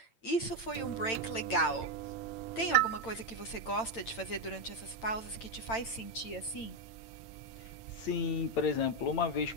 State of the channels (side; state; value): right; late; 8.9 ms